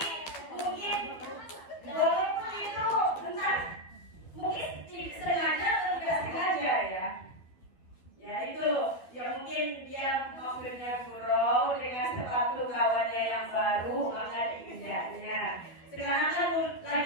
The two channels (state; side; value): late; right; 12 ms